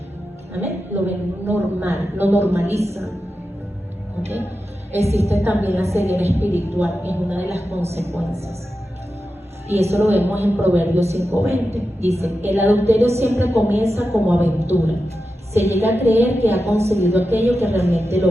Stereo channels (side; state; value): both; normal; correlation 0.91